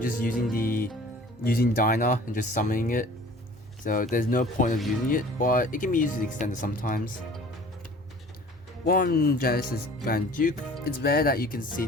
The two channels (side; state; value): both; normal; correlation 0.47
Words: using Dyna and just summoning it, so there's no point of using it, but it can be used as extender sometimes. 1 Genesis Grand Duke. It's rare that you can see